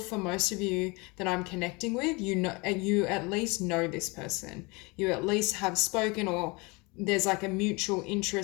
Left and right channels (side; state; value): right; quieter; 27.0 dB